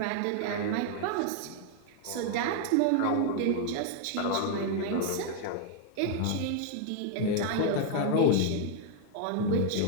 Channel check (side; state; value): both; different; correlation 0.00